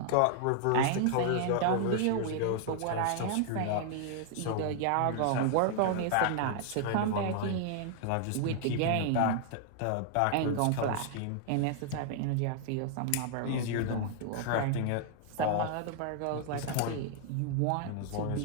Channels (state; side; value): different; both; correlation -0.01